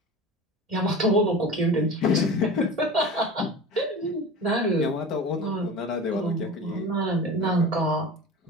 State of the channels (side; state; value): both; normal; correlation 0.33